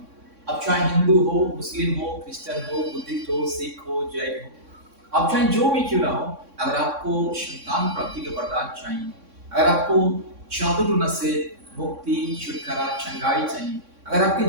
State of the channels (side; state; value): left; late; 3.6 ms